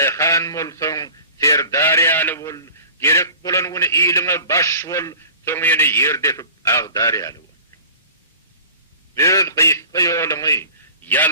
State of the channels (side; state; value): both; inverted; correlation -0.42